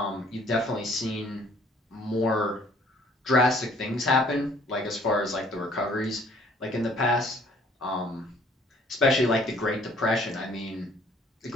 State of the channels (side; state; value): both; normal; correlation 0.59